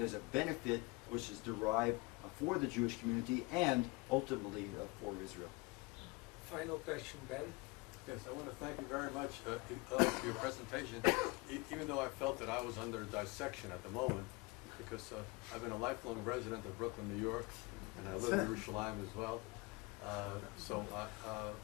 a benefit which is derived for the Jewish community and ultimately for Israel. Final question, Ben. Yes, I want to thank you very much for your presentation, even though I felt that I was under dissection at the moment, because I've been a lifelong resident of Brooklyn, New York, and I live in Yerushalayim as well. So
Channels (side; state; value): right; quieter; 25.5 dB